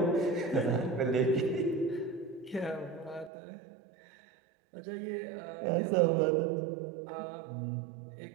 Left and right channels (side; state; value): left; drops out; at 3.3 s